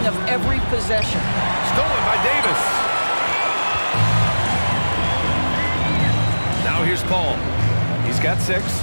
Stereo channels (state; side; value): inverted; both; correlation -1.00